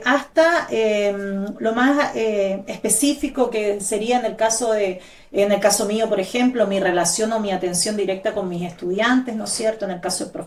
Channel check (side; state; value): both; identical; correlation 1.00